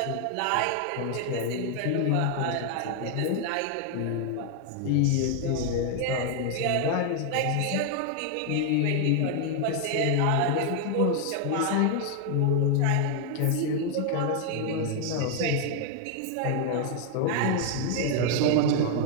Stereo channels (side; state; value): both; different; correlation 0.00